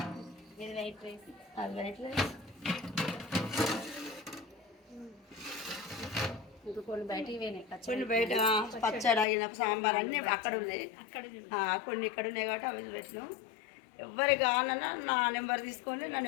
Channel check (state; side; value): drops out; right; at 9.2 s